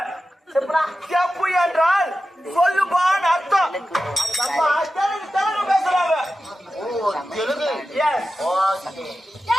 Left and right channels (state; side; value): normal; both; correlation 0.93